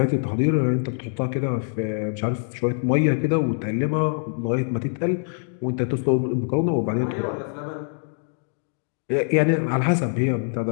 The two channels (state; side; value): silent; right; digital silence